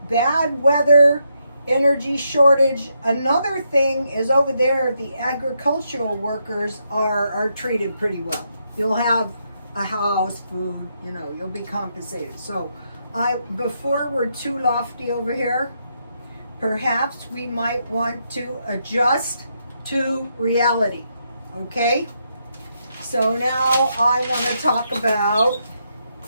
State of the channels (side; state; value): both; inverted; correlation -0.79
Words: Bad weather energy shortage. Another thing is over there, the agricultural workers are treated pretty well. You'll have a house, food, you know, you'll be compensated. So before we're too lofty over here, perhaps we might want to adjust to reality. Okay? So now I want to talk about